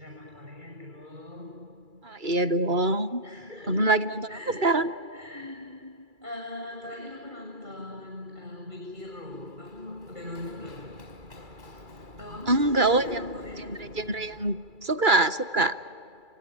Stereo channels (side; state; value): left; late; 2.3 ms